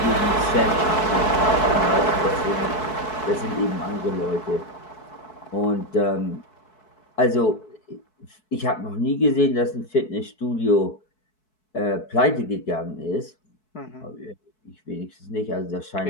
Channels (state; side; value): late; right; 4.6 ms